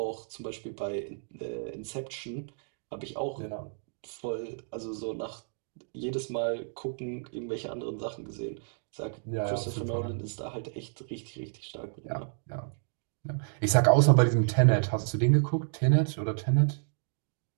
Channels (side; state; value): left; silent; digital silence